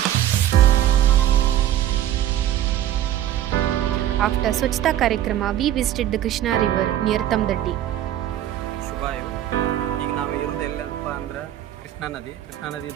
After Swachhata Karikrama, we visited the Krishna river near Tamdaddi. Krishna ನದಿ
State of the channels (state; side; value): quieter; left; 12.1 dB